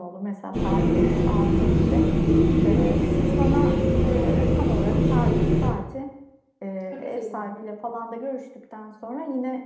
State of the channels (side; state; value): both; identical; correlation 1.00